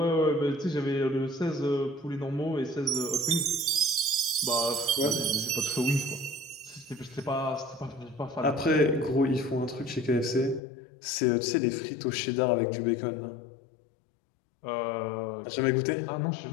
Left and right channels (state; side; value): drops out; right; at 10.6 s